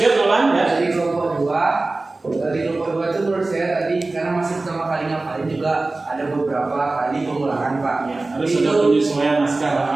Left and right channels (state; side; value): quieter; left; 3.2 dB